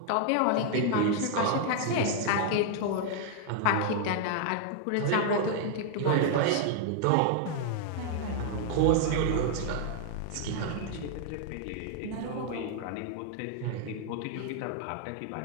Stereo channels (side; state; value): both; different; correlation 0.00